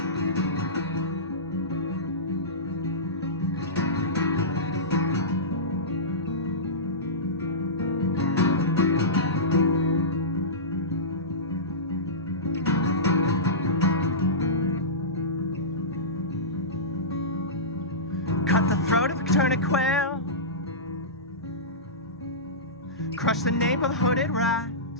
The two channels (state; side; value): normal; both; correlation -0.19